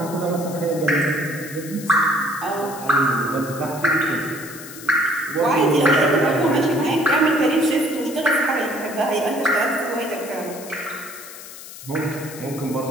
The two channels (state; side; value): noise; left; hiss, 14 dB below the sound